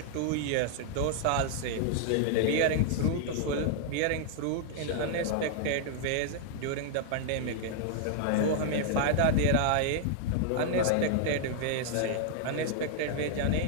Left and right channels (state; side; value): different; both; correlation -0.01